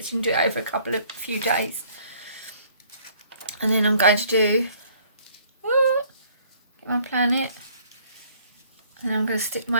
so you can do it over a few days. And then I'm going to do, get my planet, and I'm going to stick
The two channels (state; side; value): inverted; both; correlation -0.59